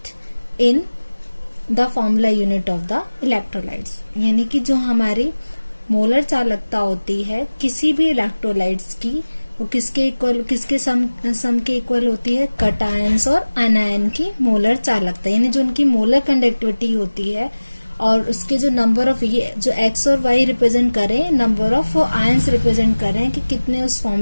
in the formula unit of the electrolytes. यानी कि जो हमारी molar चालकता होती है किसी भी electrolytes की, वो किसके इक्वल, किसके सम के इक्वल होती है, कटायंस और अनायन की मोलर चालकता. यानी जो उनकी मोलर कंडक्टिविटी होती है और उसके जो नंबर ऑफ, ये जो एक्स और वाई रिप्रेजेंट करें, नंबर ऑफ आयंस रिप्रेजेंट करें कि कितने उस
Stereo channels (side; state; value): both; inverted; correlation -1.00